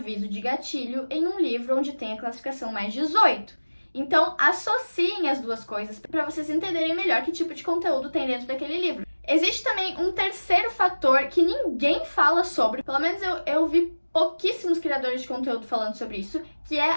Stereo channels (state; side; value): inverted; both; correlation -1.00